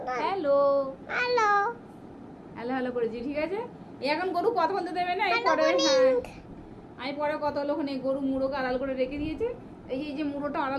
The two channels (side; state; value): both; identical; correlation 1.00